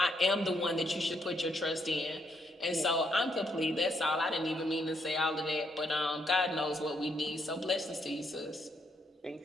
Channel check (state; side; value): normal; both; correlation 0.75